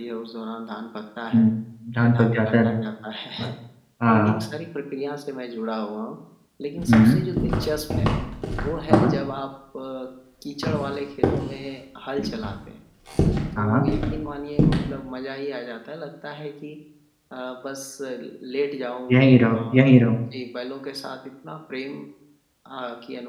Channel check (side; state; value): both; identical; correlation 1.00